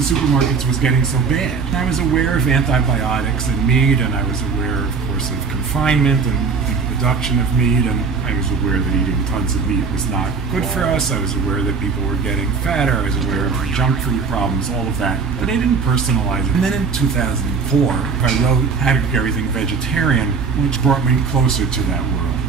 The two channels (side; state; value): left; quieter; 5.1 dB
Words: supermarkets was getting so bad. I was aware of antibiotics in meat, and I was aware, of course, of confinement and the production of meat, and I was aware that eating tons of meat was not good for us. I was aware that people were getting fatter. I was aware of our junk food problems, all of that. But I didn't personalize it. And then in 2004, I wrote How to Cook Everything Vegetarian, which brought me closer to that world.